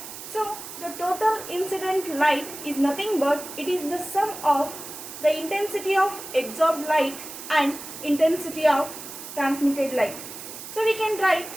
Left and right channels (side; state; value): right; noise; hiss, 11 dB below the sound